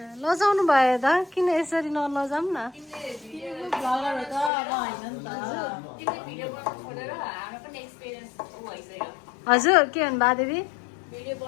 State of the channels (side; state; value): right; drops out; at 4.5 s